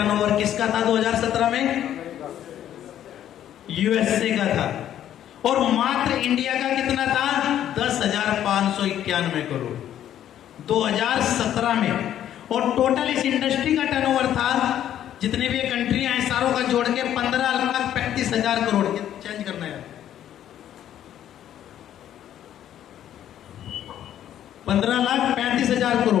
किसका था 2017 में? USA का था। और मात्र इंडिया का कितना था? 10,591 करोड़ 2017 में। और टोटल इस इंडस्ट्री का टर्नओवर था, जितने भी कंट्रियां हैं सारों का जोड़ के 15,35,000 करोड़। चेंज करना है, 15,35,000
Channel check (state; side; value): quieter; right; 11.0 dB